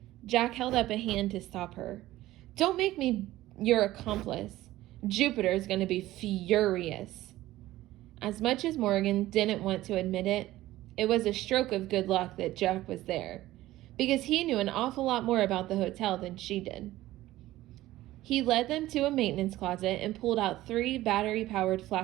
Jack held up a hand to stop her. Don't make me your accomplice. Jupiter is going to be furious. As much as Morgan didn't want to admit it, it was a stroke of good luck that Jack was there, because he knew an awful lot more about the hotel than she did. He led them to a maintenance closet and pulled out 3 battery-powered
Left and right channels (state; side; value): quieter; left; 16.0 dB